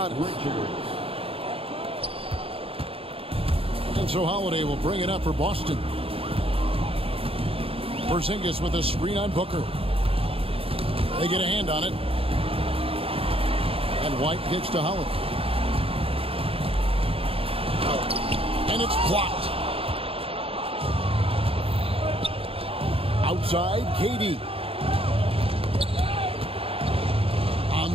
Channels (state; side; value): late; left; 0.27 ms